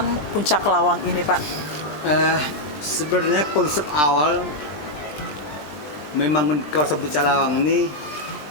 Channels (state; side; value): late; right; 20 ms